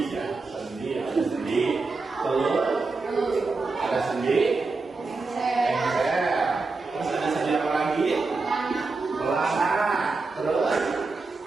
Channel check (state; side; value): quieter; left; 3.9 dB